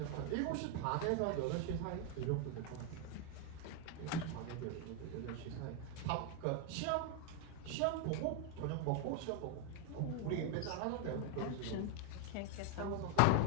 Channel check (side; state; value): both; different; correlation 0.00